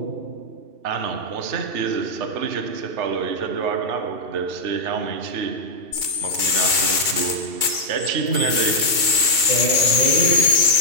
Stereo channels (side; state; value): left; late; 2.7 ms